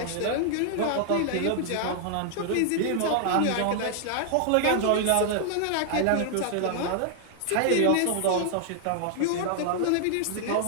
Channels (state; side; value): different; both; correlation 0.00